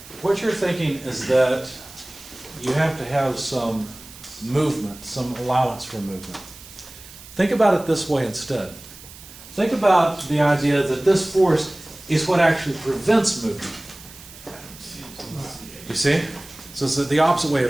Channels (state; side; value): noise; right; hiss, 18 dB below the sound